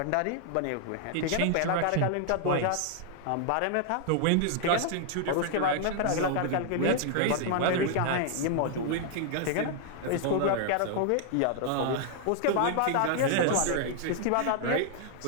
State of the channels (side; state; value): both; different; correlation -0.01